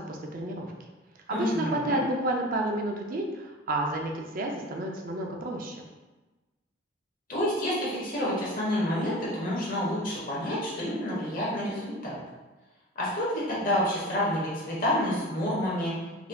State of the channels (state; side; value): normal; both; correlation 0.34